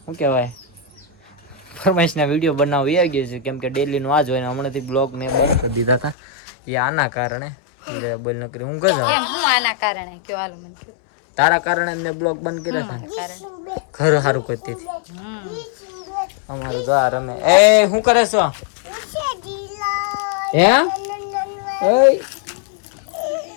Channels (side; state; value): right; drops out; at 6.2 s